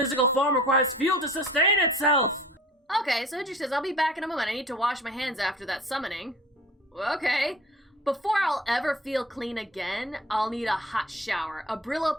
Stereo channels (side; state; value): both; normal; correlation 0.44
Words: form requires fuel to sustain itself. Okay, so Hendrik says, I'll be back in a moment. I need to wash my hands after that summoning. Okay. Before I'll ever feel clean again, I'll need a hot shower, a Brillo